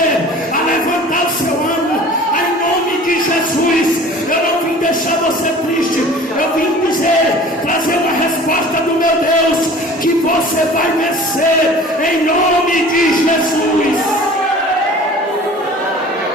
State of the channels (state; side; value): normal; both; correlation 0.44